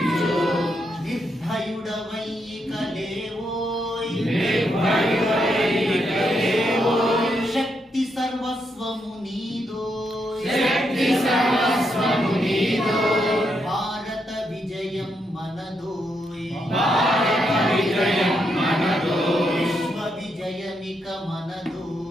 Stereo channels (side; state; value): both; normal; correlation 0.80